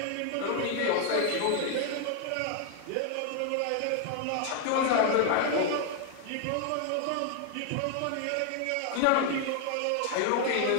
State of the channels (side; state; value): both; different; correlation 0.00